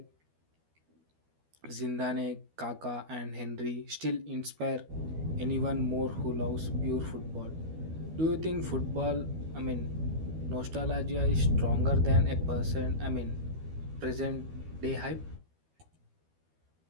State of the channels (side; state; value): left; late; 12 ms